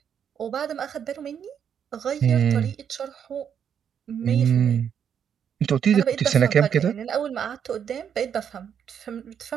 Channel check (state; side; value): quieter; left; 8.2 dB